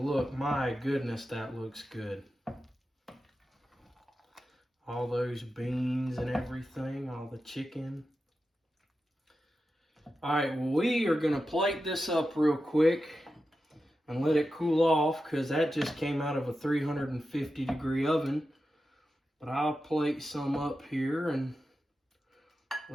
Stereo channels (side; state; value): both; normal; correlation 0.91